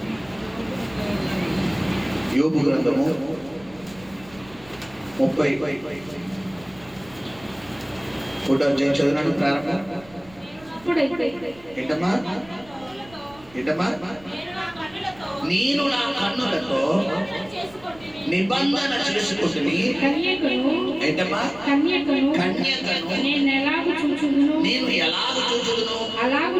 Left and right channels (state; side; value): noise; right; rumble, 24 dB below the sound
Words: యోబు గ్రంథము 30 ఫోటో చదివినాడు ప్రారంభం. ఏంటమ్మా ఏంటమ్మా? నేను నా కన్నులతో నిబంధన చేసుకుంటుని. ఏంటమ్మా? కన్యకను నేను ఎలాగ చూచుదును అలాగు